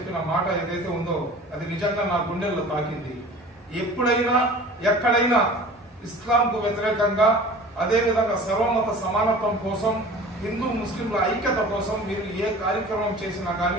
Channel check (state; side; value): normal; both; correlation 0.42